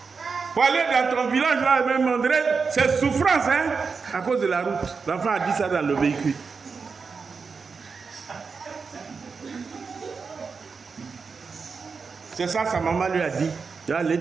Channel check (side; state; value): left; quieter; 5.1 dB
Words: pour aller dans ton village, là, même André, c'est souffrance, hein, à cause de la route. L'enfant a dit ça dans le véhicule. C'est ça, sa maman lui a dit. Tu vas aller